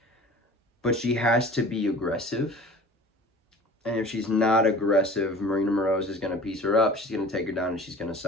but she has to be aggressive. And if she's not aggressive, Marina Moroz is going to piece her up. She's going to take her down and she's going to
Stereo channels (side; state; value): both; normal; correlation 0.43